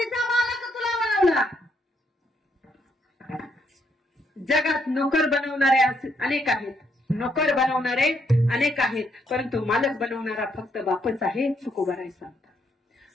मालक तुला बनवला. जगात नोकर बनवणारे अनेक आहेत, नोकर बनवणारे अनेक आहेत, परंतु मालक बनवणारा फक्त बापच आहे. तुकोबराय सांगतात,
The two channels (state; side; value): normal; both; correlation 0.74